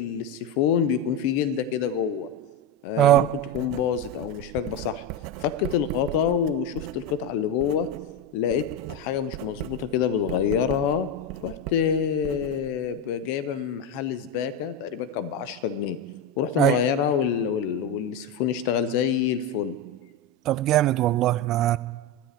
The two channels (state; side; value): normal; both; correlation 0.13